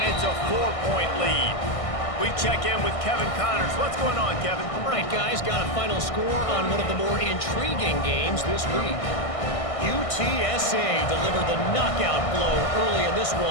it's a 4-point lead. We check in with Kevin Connors. What's going on, Kevin? All right, guys, got a final score on one of the more intriguing games this week. UTSA delivered the knockout blow early in this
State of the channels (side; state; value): right; late; 1.6 ms